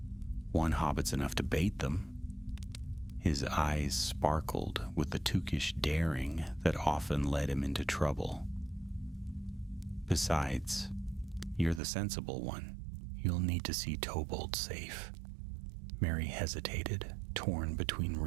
One hobbit's enough to bait them." His eyes sparkled with the Tukish daring that often led him into trouble. "Besides, you're the sensible one. You'll need to see Tobold safe." Merry hesitated, torn between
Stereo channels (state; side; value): drops out; left; at 11.8 s